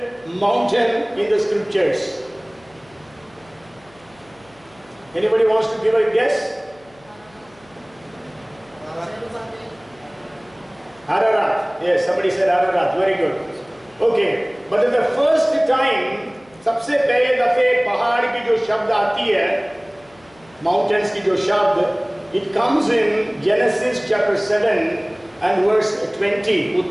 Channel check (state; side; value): noise; left; hum, 28 dB below the sound